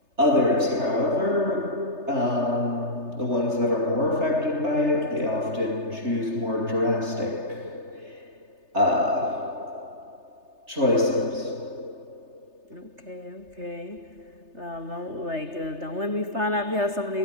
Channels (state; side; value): late; left; 3.3 ms